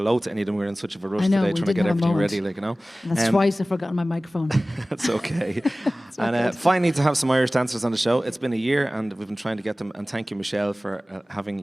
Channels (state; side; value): normal; both; correlation 0.97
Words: to any of them. We were in such of a rush I know, today we trying to didn't get have a everything moment. ready, like, you know. And that's twice I've forgotten my microphone. That's okay. all And good. finally, to have some Irish dancers on the show. It's been a year, and we've been trying to get them. And thank you, Michelle, for having